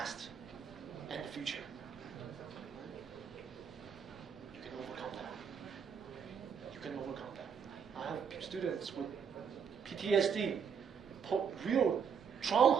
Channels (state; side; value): quieter; left; 6.9 dB